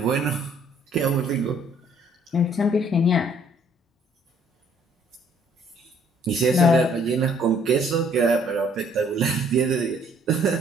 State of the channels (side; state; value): both; normal; correlation 0.62